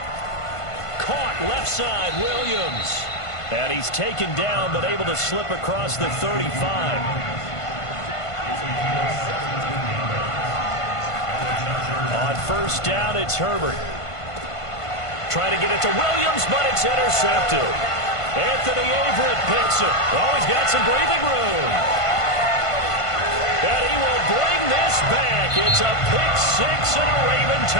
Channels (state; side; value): late; right; 1.5 ms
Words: Caught left side, Williams. And he's taken down but able to slip across the 35. On 1st down, it's Herbert. Trying to get it to Williams, but it's intercepted. Anthony Averett picks it. Oh, he's got some breathing room. And he will bring this back. It's a pick-6 and a Raven